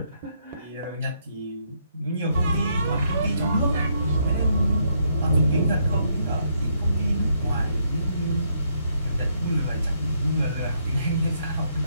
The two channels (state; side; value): inverted; both; correlation -0.74